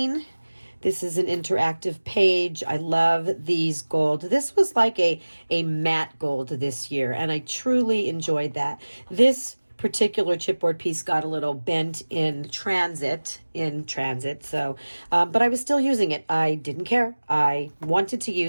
This is an interactive page. I love these gold. This was like a matte gold this year, and I truly enjoyed that. This particular chipboard piece got a little bent in transit, so but I was still using it. I didn't care. I wanted to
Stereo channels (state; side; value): inverted; both; correlation -1.00